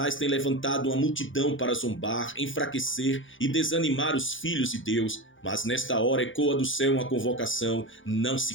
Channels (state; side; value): late; right; 0.57 ms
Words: tem levantado uma multidão para zombar, enfraquecer e desanimar os filhos de Deus. Mas nesta hora ecoa do céu uma convocação: não